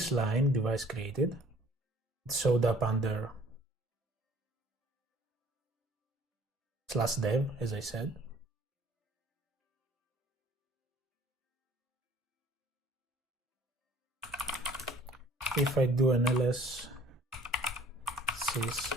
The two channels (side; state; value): both; normal; correlation 0.54